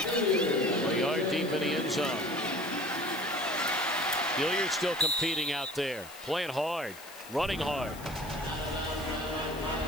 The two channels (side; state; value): left; noise; hiss, 17 dB below the sound